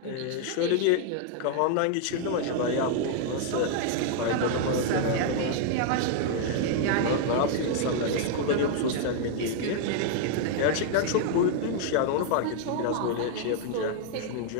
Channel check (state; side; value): different; both; correlation 0.00